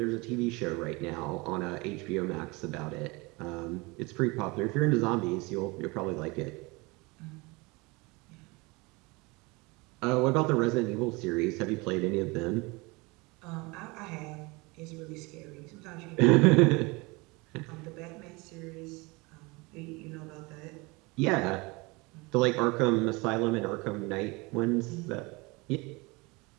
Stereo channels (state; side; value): quieter; left; 25.6 dB